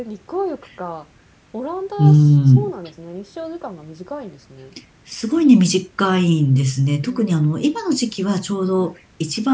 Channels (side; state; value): both; identical; correlation 1.00